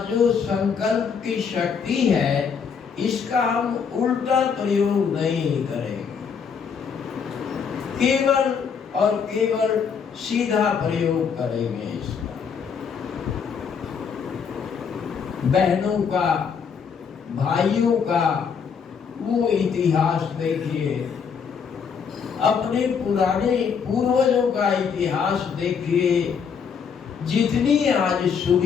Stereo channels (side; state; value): right; quieter; 6.5 dB